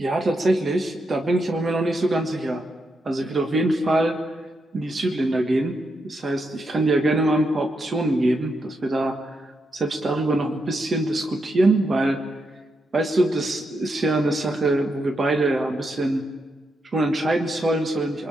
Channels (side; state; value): both; normal; correlation 0.83